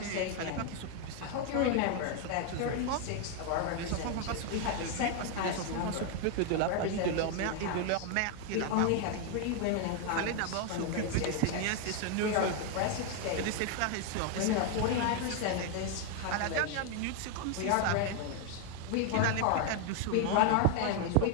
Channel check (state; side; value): different; both; correlation 0.01